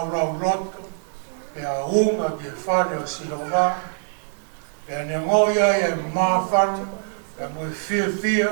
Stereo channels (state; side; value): silent; left; 59 dB below the other